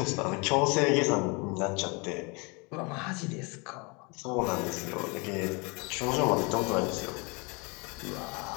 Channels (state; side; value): quieter; right; 29.9 dB